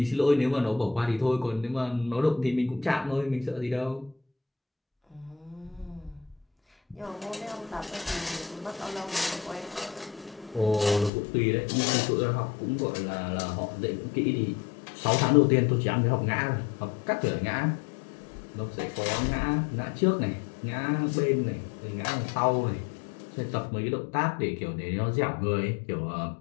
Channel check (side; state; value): right; drops out; at 11.1 s